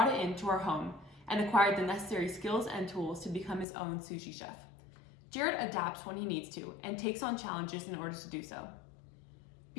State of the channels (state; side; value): drops out; right; at 3.7 s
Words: it into our home and acquired the necessary skills and tools to become his own sushi chef. Jared adapts when he needs to and takes on challenges in order to do so.